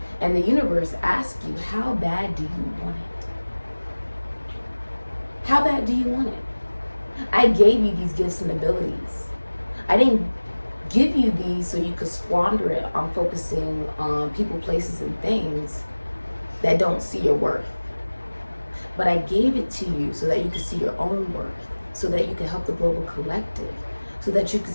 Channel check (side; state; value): both; inverted; correlation -1.00